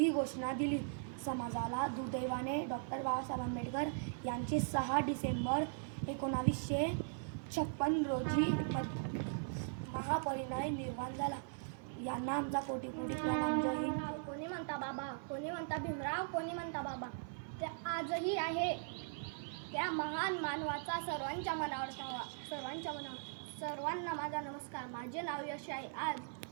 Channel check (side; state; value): left; silent; 51 dB below the other